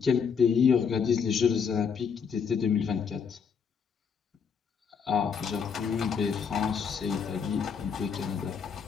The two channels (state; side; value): quieter; right; 6.5 dB